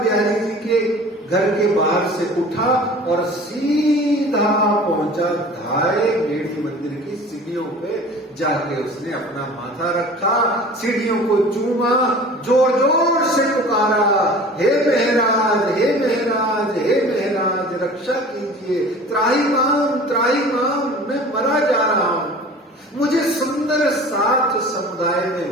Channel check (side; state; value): both; normal; correlation 0.42